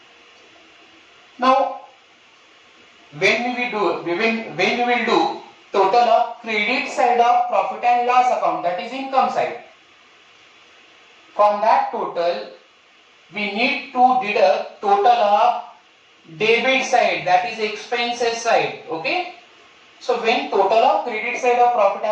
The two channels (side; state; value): both; identical; correlation 1.00